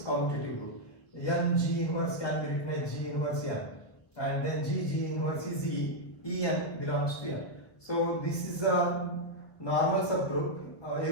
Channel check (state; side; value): late; right; 1.1 ms